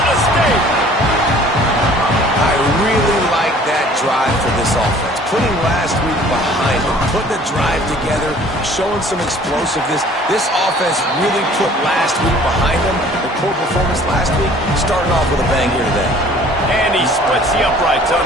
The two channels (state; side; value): normal; both; correlation 0.52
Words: State. I really like that drive for this offense. Putting last week behind them, putting the drive together, showing some explosiveness. This offense really put last week behind them. The poor performance last week, starting off with a bang here today. And he splits the uprights on